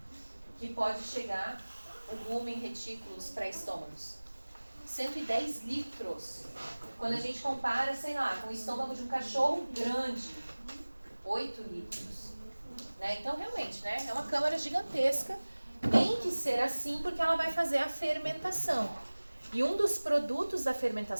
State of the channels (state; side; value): inverted; both; correlation -1.00